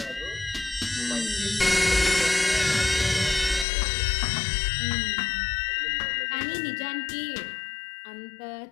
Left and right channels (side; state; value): right; drops out; at 3.7 s